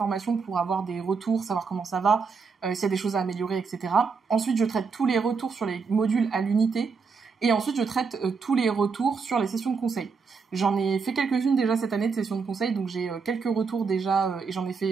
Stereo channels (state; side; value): quieter; left; 5.2 dB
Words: pour avoir des retours, savoir comment ça va, s'il y a des choses à améliorer, etc. Ensuite, je traite tous les retours sur les modules à l'unité. Et ensuite, je traite tous les retours sur les sessions de conseil. J'en ai fait quelques-unes déjà cette année de sessions de conseil, donc j'ai quelques retours déjà, et j'en ai